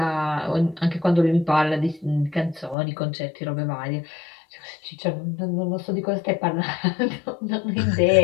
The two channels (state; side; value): drops out; right; at 2.8 s